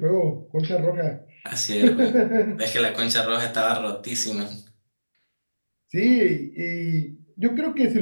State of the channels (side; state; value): both; inverted; correlation -1.00